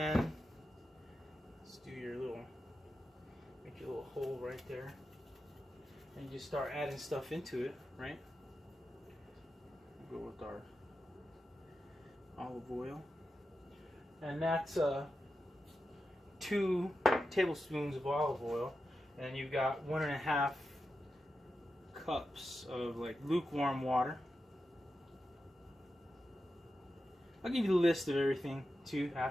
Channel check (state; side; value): normal; both; correlation 0.90